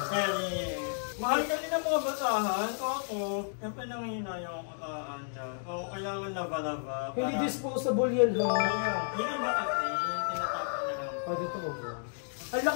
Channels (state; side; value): silent; right; digital silence